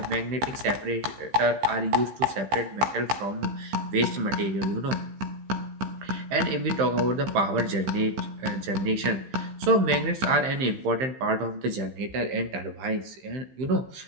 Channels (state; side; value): late; left; 15 ms